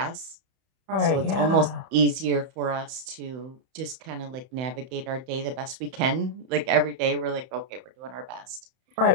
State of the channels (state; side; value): late; left; 31 ms